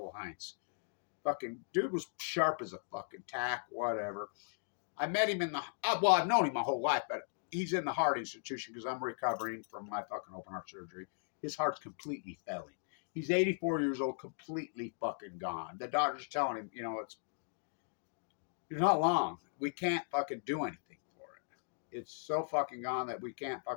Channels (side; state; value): right; silent; digital silence